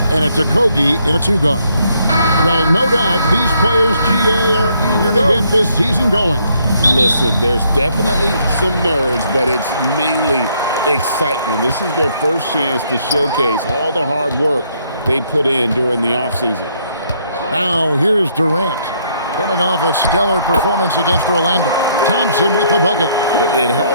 And it's Okogie in a 2-guard. Well, no doubt these players, GA, are eager to get this season going. Listen, there's definitely some nerves, but it's mainly excitement. This is their first chance to showcase all the hard work they put in during the offseason. Now, here's Durant, coming off a stellar performance against Orlando. Thompson with the bucket. It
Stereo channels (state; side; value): inverted; both; correlation -0.70